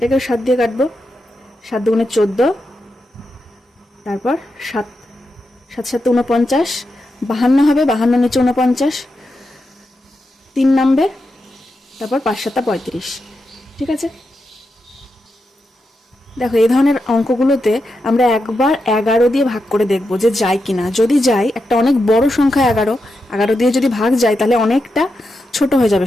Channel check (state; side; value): normal; both; correlation 0.87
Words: 7 দিয়ে কাটবো, 7 দুগুণে 14, তারপর 7 7 7 49, 52 হবে, 52 নিচে 49, 3 নামবে, তারপর 5 7 35। ঠিক আছে, দেখো এই ধরনের অঙ্কগুলোতে আমরা একবার 11 দিয়ে ভাগ করে দেখব যে যায় কিনা। যদি যায়, একটা অনেক বড় সংখ্যা 11 দিয়ে যদি ভাগ যায় তাহলে অনেকটা ছোট হয়ে যাবে